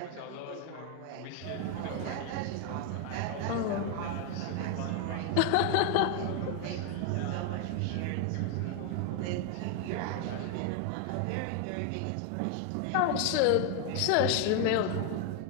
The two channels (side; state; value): both; different; correlation 0.00